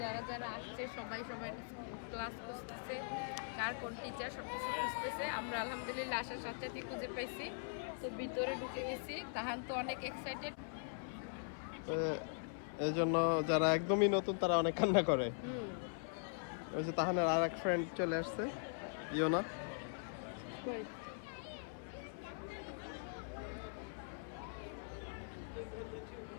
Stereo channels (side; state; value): right; silent; 50 dB below the other